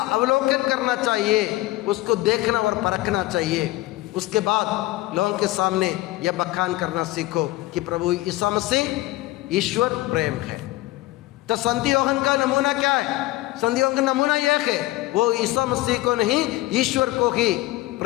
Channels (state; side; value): quieter; right; 18.3 dB